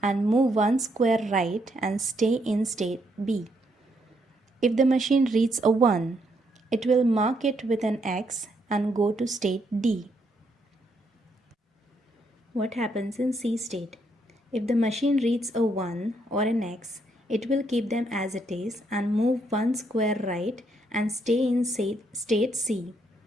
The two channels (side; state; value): both; normal; correlation 0.75